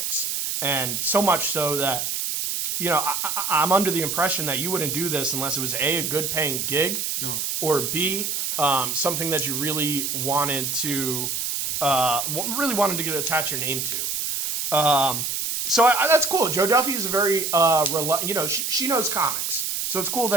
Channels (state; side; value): noise; right; hiss, 1 dB below the sound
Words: and so much so that I'm under the impression that you wouldn't do this unless it was a good paying gig, or B, something that you really wanted to get attach your name to. So that's cool. Joe Duffy is a very she knows comics, so it's cool